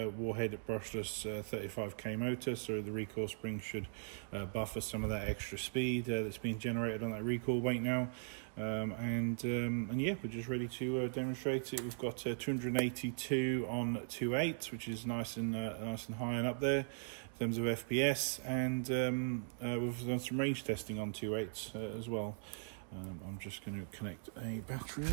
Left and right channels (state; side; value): silent; left; digital silence